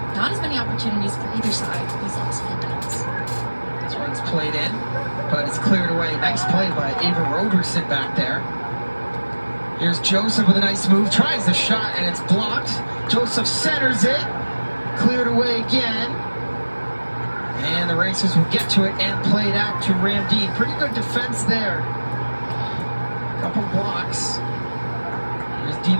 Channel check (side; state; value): both; inverted; correlation -1.00